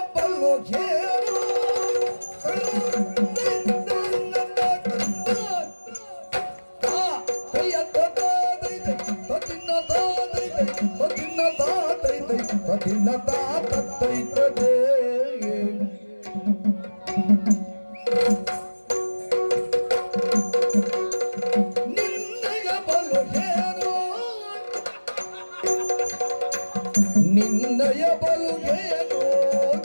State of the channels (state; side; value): inverted; both; correlation -1.00